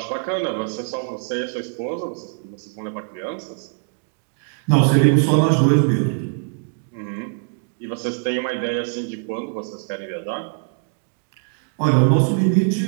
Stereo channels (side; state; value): left; silent; 56 dB below the other